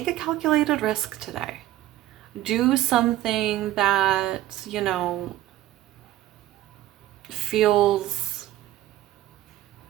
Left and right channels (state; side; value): quieter; left; 14.7 dB